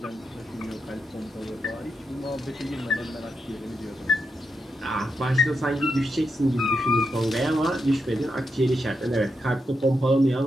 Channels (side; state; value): both; normal; correlation 0.85